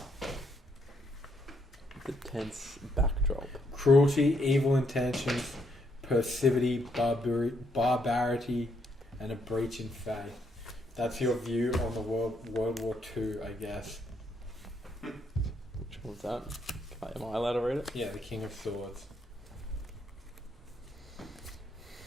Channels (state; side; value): normal; both; correlation 0.74